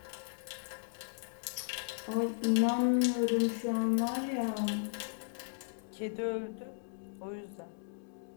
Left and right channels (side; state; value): right; silent; digital silence